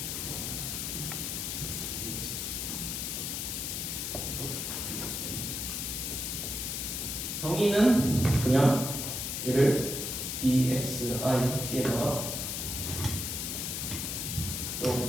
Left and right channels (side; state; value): left; noise; hiss, 3 dB below the sound